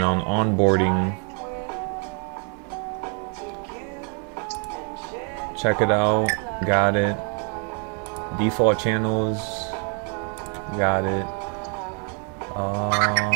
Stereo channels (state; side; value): quieter; left; 39.9 dB